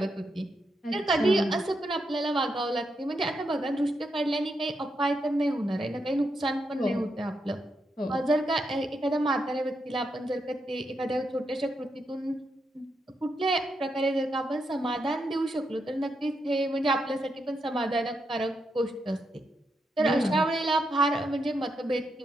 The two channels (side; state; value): both; normal; correlation 0.82